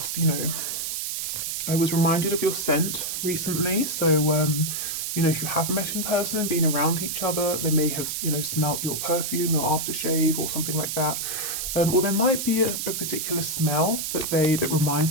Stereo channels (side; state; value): right; noise; hiss, 3 dB below the sound